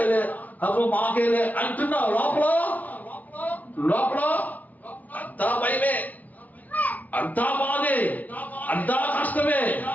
అప్పుడు మాకేలే అంటున్నావు. లోపల అంతా భయమే, అంతా బాధే, అంతా కష్టమే,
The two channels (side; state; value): right; late; 0.075 ms